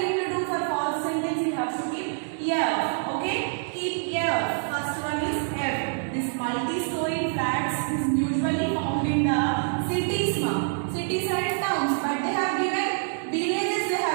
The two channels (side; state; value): left; silent; digital silence